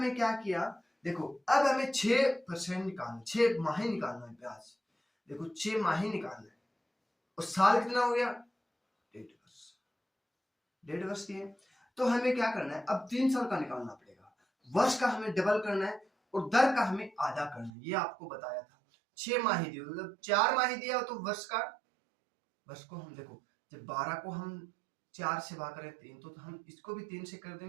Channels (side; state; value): left; drops out; at 17.7 s